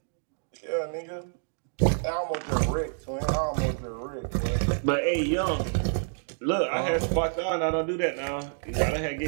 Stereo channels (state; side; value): silent; left; digital silence